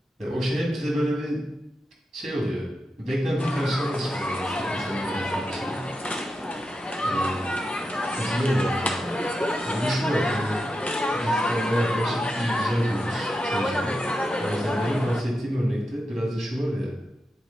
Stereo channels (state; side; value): normal; both; correlation 0.88